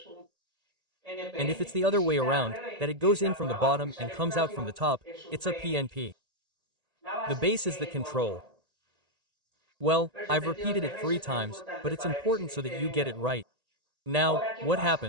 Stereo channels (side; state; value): left; late; 1.8 ms